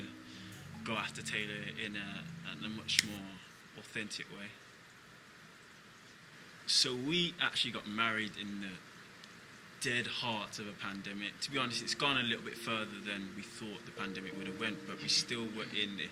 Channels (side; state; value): both; identical; correlation 1.00